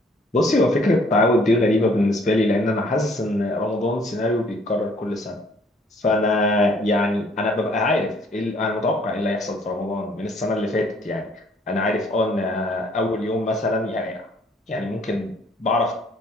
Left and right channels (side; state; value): both; normal; correlation 0.61